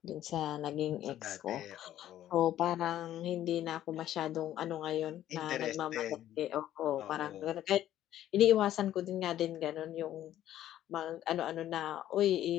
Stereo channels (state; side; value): quieter; right; 12.4 dB